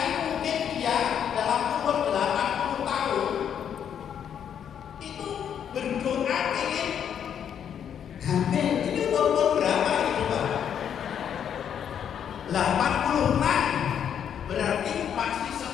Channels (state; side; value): quieter; right; 8.6 dB